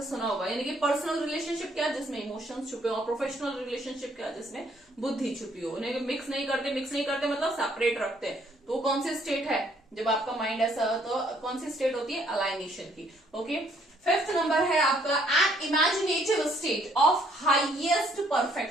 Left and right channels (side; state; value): both; normal; correlation 0.66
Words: सुना होगा। यानी कि पर्सनल रिलेशनशिप क्या, जिसमें इमोशंस छुपे हो, और प्रोफेशनल रिलेशनशिप क्या, जिसमें बुद्धि छुपी हो। उन्हें मिक्स नहीं करते, मिक्स नहीं करते मतलब सेपरेट रखते हैं। तो कौन सी स्टेट है, जब आपका माइंड ऐसा हो तो कौन सी स्टेट होती है, अलाइनेशन की, ओके। फिफ्थ नंबर है आपका an imaginative state of highest